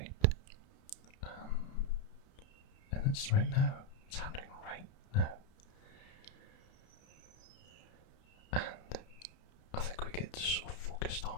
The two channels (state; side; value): late; right; 32 ms